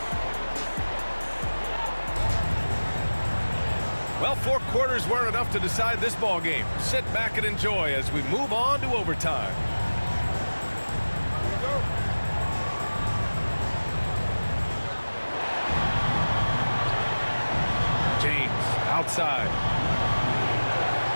Well, 4 quarters weren't enough to decide this ball game. Sit back and enjoy as we move on to overtime. Outside.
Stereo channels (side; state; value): both; inverted; correlation -1.00